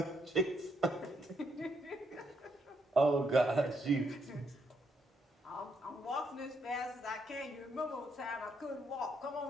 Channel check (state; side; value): normal; both; correlation 0.75